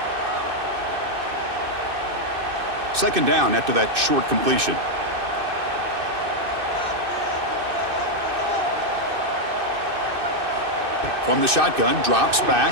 Second down after that short completion. From the shotgun, drops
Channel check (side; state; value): left; late; 2.6 ms